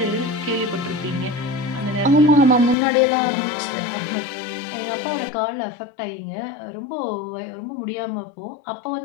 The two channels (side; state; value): right; drops out; at 2.8 s